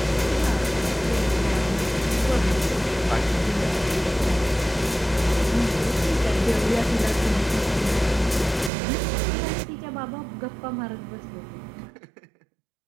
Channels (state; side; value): drops out; left; at 8.7 s